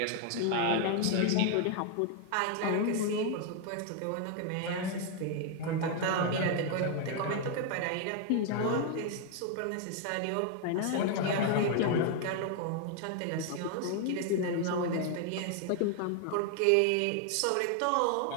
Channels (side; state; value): both; different; correlation 0.00